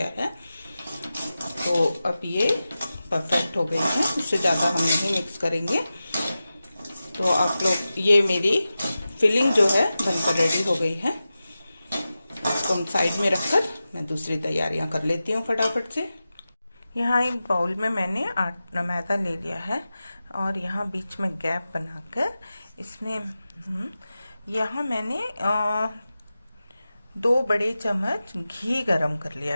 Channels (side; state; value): both; inverted; correlation -0.94